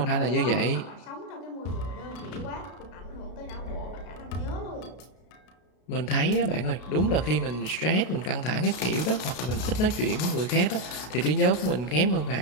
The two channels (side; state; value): right; late; 33 ms